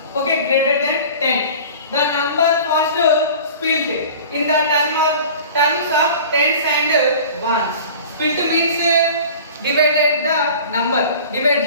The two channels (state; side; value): inverted; both; correlation -0.41